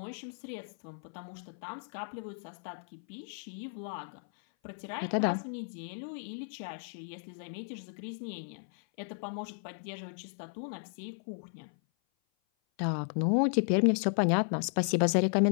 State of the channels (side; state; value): right; silent; 55 dB below the other